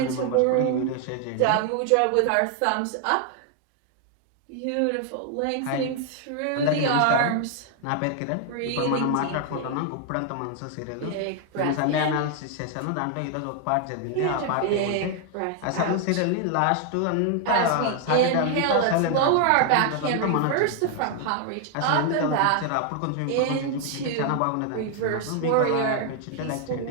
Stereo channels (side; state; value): both; different; correlation 0.00